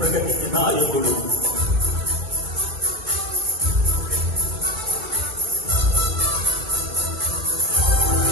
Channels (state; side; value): late; left; 2.3 ms